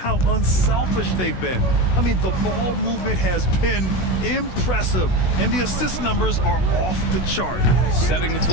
unselfish they've been. I mean, the ball movement has been impressive, and the assist numbers are off the chart. Setting the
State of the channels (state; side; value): late; right; 16 ms